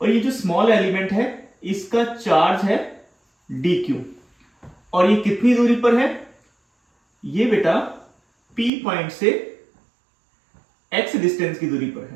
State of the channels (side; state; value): left; drops out; at 8.7 s